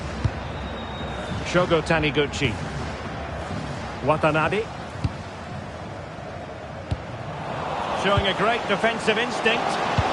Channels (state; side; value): identical; both; correlation 1.00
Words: Shogo Taniguchi. Watanabe. Showing a great defensive instinct.